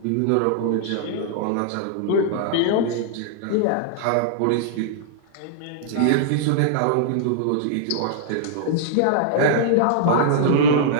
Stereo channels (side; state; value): both; different; correlation -0.02